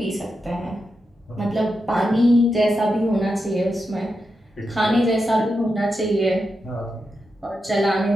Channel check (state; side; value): normal; both; correlation 0.87